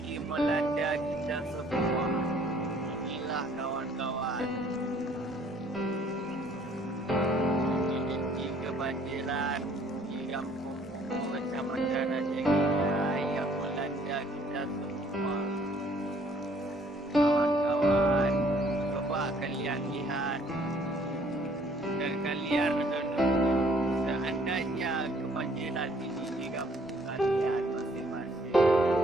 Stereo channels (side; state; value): both; normal; correlation 0.61